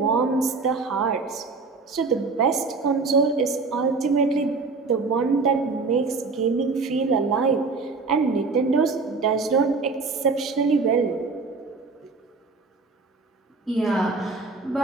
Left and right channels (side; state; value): left; quieter; 4.2 dB